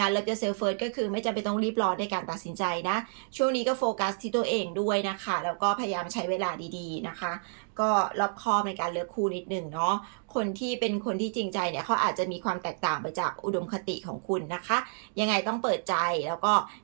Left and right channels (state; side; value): silent; left; digital silence